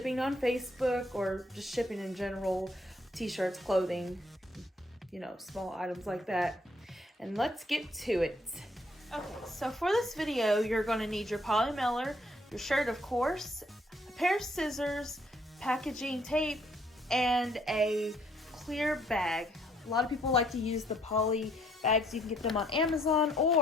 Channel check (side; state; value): both; normal; correlation 0.67